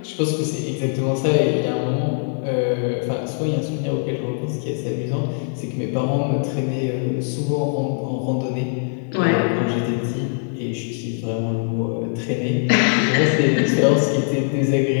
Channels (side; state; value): right; silent; 65 dB below the other